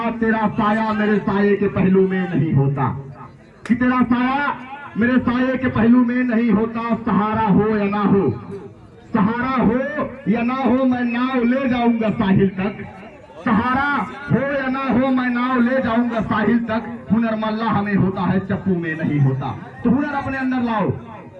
तेरा साया मेरे साये के पहलू में नहीं होता, कि तेरा साया मेरे साये के पहलू में नहीं होता। सहारा हो या ना हो, सहारा हो या ना हो, मैं नाव ले जाऊंगा साहिल तक। सहारा हो या ना हो, मैं नाव ले जाऊंगा साहिल तक। हुनर मल्ला हमें होता है, चप्पू में नहीं होता। तो हुनर अपने अंदर लाओ।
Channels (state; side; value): identical; both; correlation 1.00